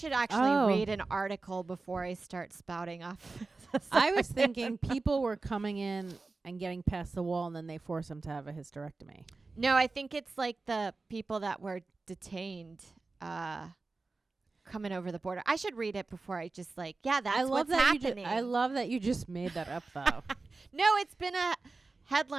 actually read an article before I start spouting off. I was thinking people were coming in and getting past the wall and then they force them to have a hysterectomy. No, I think it's like the people that were detained coming over the border. I should read it before I just like, that's what's happening. I love that you just made that up, though. No, it's been a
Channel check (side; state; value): left; quieter; 3.7 dB